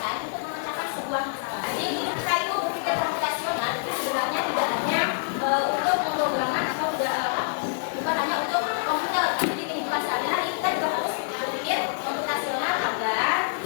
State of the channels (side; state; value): right; silent; digital silence